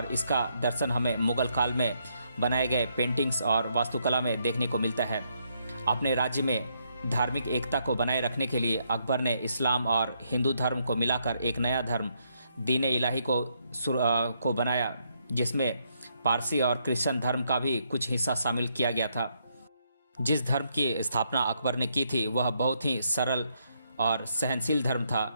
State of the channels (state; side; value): inverted; both; correlation -0.75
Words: इसका दर्शन हमें मुगल काल में बनाए गए पेंटिंग्स और वास्तुकला में देखने को मिलता है। अपने राज्य में धार्मिक एकता को बनाए रखने के लिए अकबर ने इस्लाम और हिंदू धर्म को मिलाकर एक नया धर्म दीन इलाही को बनाया, जिसमें पारसी और क्रिश्चियन धर्म का भी कुछ हिस्सा शामिल किया गया था। जिस धर्म की स्थापना अकबर ने की थी वह बहुत ही सरल और सहनशील धर्म था